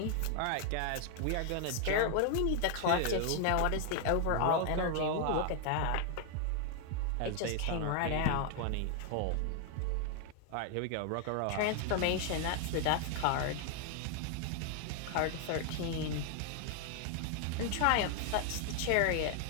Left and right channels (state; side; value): different; both; correlation 0.00